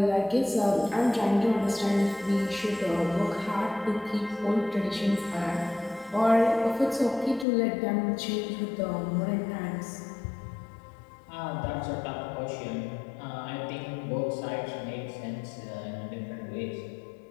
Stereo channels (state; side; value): drops out; right; at 7.5 s